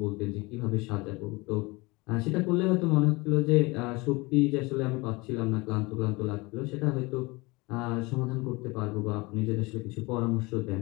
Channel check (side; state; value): right; quieter; 24.5 dB